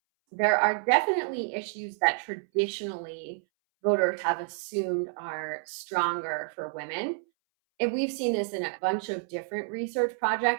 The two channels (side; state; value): left; silent; 59 dB below the other